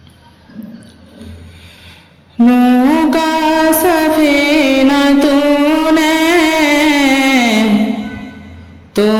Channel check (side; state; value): both; identical; correlation 1.00